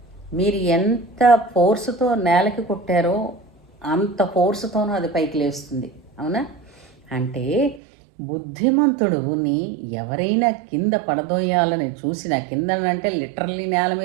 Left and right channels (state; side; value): drops out; left; at 7.8 s